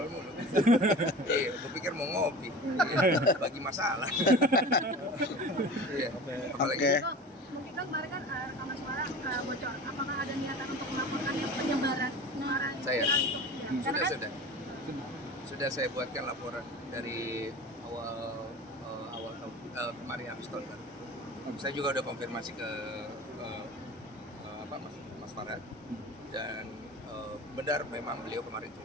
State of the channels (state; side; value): normal; both; correlation 0.36